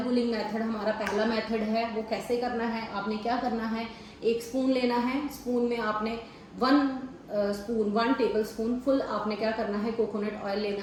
पुलिंग मेथड हमारा पहला मेथड है। वो कैसे करना है, आपने क्या करना है, 1 स्पून लेना है। स्पून में आपने 1 टेबल स्पून फुल आपने क्या करना है, कोकोनट ऑयल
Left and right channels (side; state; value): both; identical; correlation 1.00